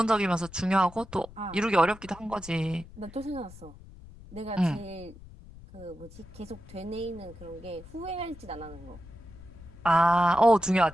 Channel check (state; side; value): noise; left; rumble, 18 dB below the sound